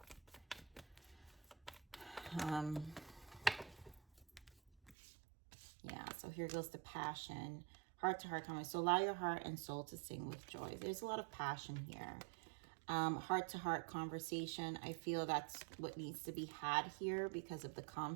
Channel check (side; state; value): left; drops out; at 5.0 s